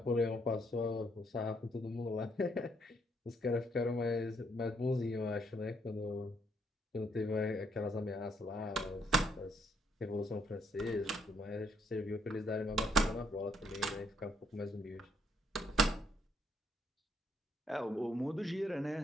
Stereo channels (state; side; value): normal; both; correlation 0.72